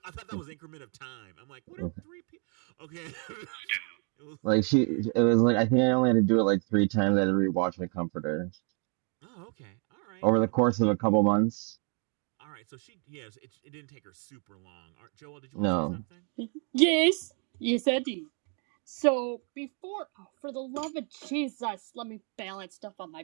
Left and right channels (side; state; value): left; quieter; 39.5 dB